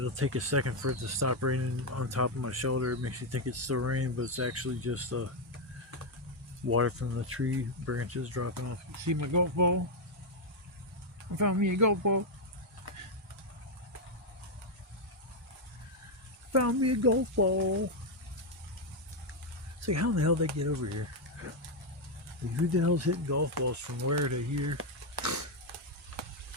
take a second for it to stop raining on top of my shoulder. It makes you think it's still raining, but it's actually just water from the tree branches dropping off. See my golf ball? I found me a golf ball. Found me a golf ball. It's like, how in the hell did they get over here? Like, who the hell's hitting golf balls from where to here?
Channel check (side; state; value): both; normal; correlation 0.02